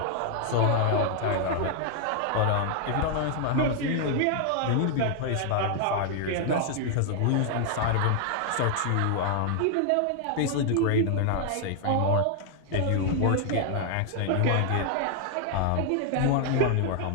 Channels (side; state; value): both; different; correlation 0.00